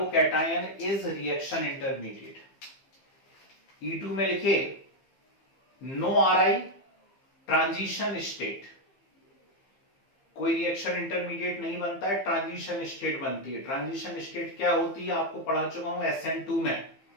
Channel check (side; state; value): right; late; 15 ms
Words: is reaction intermediate. E2 में लिखिए नो RI ट्रांजिशन स्टेट, कोई रिएक्शन इंटरमीडिएट नहीं बनता है, ट्रांजिशन स्टेट बनती है। ट्रांजिशन स्टेट क्या होती है आपको पढ़ा चुका हूं SN2 में,